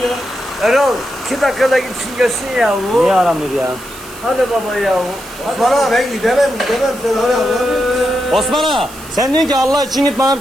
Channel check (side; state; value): right; noise; hiss, 18 dB below the sound